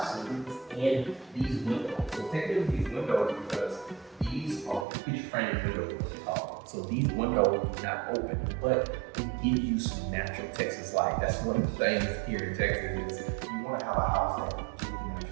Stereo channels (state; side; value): drops out; left; at 4.9 s